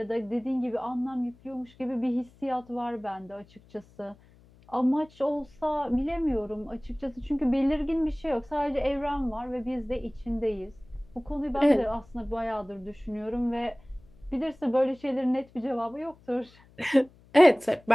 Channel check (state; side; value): noise; left; hum, 27 dB below the sound